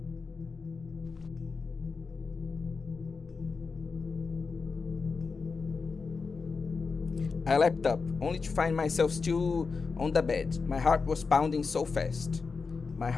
I leapt up, only to find myself still on the bed. My heart was pounding so fast. My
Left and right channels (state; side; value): quieter; right; 4.7 dB